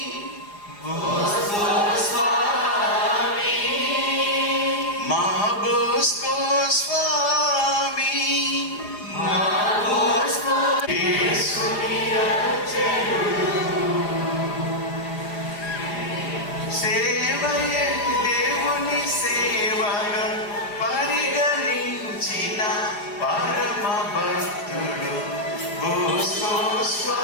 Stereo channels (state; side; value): late; right; 4.9 ms